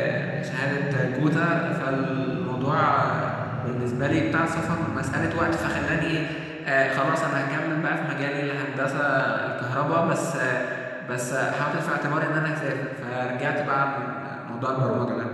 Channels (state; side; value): identical; both; correlation 1.00